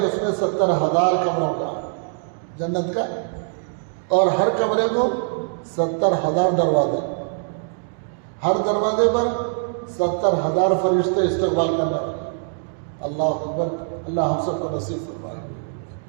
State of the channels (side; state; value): left; silent; 64 dB below the other